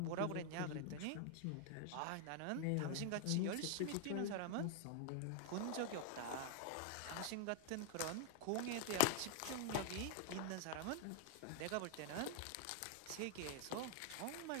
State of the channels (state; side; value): different; both; correlation 0.00